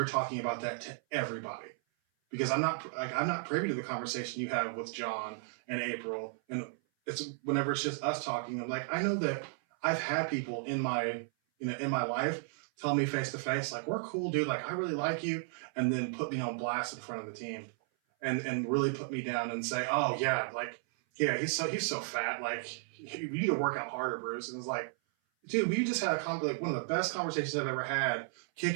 talking about that to everybody, because I'm not privy to the conversation you have with John and April, and it's whenever it's just us talking. I'm like, I know that I've had people in my in my life tell me face to face, like, we're cool, dude, like, I really like you, and then put me on blast in front of the team, and really put me down and say, oh yeah, like, yeah, he's so fat, like, you need to work out harder, Bruce. And it's like, dude, we just had like one of the best conversations I've ever had,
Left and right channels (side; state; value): left; silent; 55 dB below the other